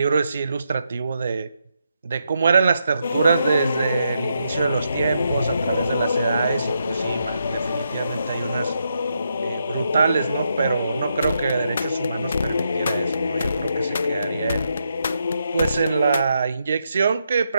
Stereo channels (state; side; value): inverted; both; correlation -0.81